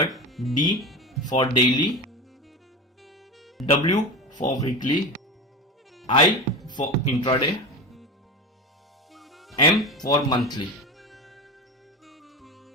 D for daily, W for weekly, I for intraday, M for monthly.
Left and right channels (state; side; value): normal; both; correlation 0.24